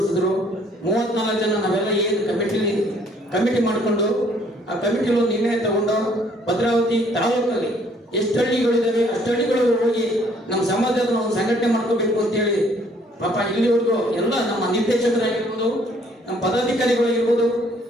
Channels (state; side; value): normal; both; correlation 0.62